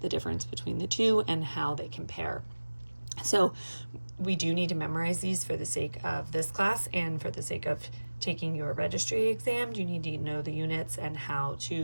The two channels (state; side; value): inverted; both; correlation -1.00